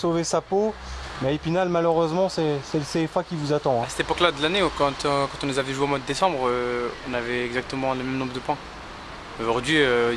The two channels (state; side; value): identical; both; correlation 1.00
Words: sa peau, mais Épinal, malheureusement, c'est le CFA qui vous attend. Hein. À cette époque-là de l'année, quand on nous avait joué au mois de décembre, on avait exactement le même nombre de points. Aujourd'hui,